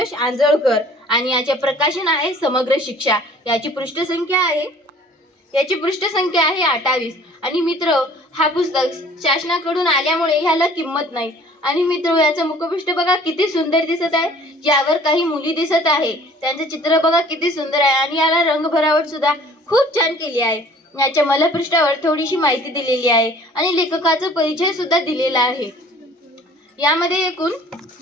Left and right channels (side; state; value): both; normal; correlation 0.52